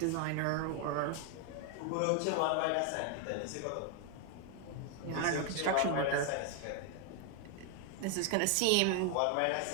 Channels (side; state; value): both; different; correlation 0.01